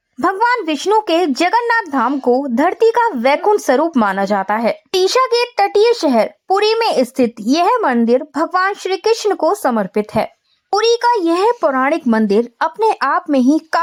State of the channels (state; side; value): identical; both; correlation 1.00